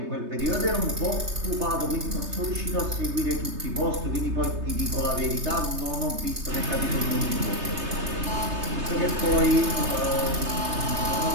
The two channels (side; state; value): left; late; 3.3 ms